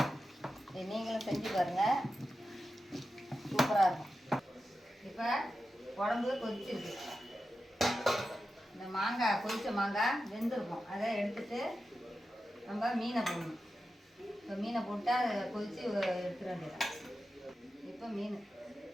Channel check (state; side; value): normal; both; correlation 0.91